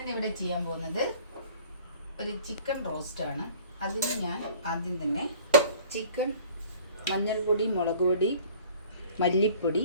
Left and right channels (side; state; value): both; inverted; correlation -0.49